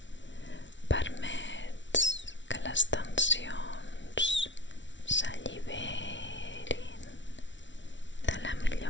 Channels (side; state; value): right; late; 0.54 ms